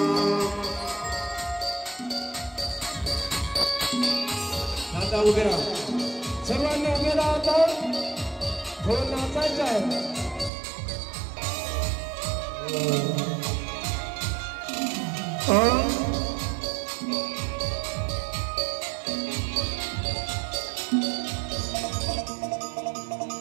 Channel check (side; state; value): left; drops out; at 10.5 s